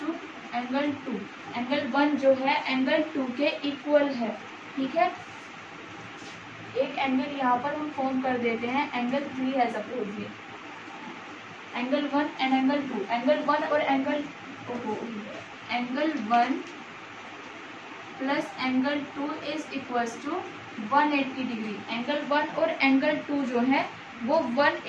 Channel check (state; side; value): identical; both; correlation 1.00